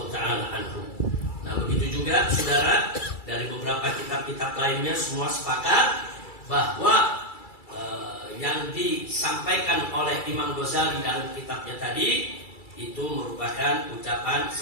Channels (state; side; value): late; right; 2.3 ms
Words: taala anhu. Nah, begitu juga saudara, dari beberapa kitab-kitab lainnya semua sepakat bahwa yang disampaikan oleh Imam Ghazali dalam kitabnya tadi itu merupakan ucapan